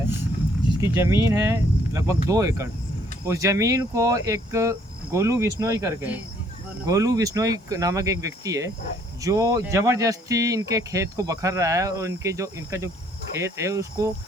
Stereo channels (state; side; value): normal; both; correlation 0.64